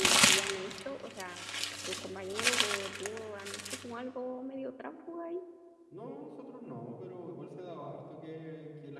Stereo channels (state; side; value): identical; both; correlation 1.00